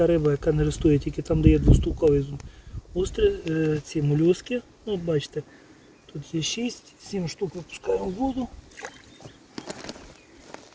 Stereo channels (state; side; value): identical; both; correlation 1.00